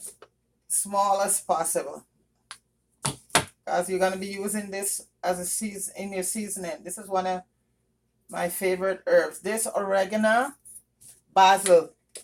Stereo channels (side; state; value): both; identical; correlation 1.00